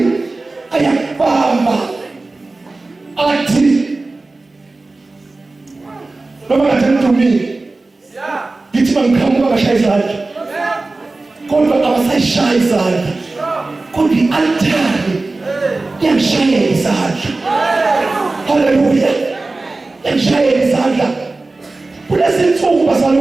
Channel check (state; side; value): quieter; left; 3.3 dB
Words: ayakubamba athi noma kade ngidumile ngithi bangiqhamuka bashaya izandla kodwa abasayishaya izandla kodwa i-altari yangishayela izandla. Haleluya. Yangishayela izandla. Kulezi nsuku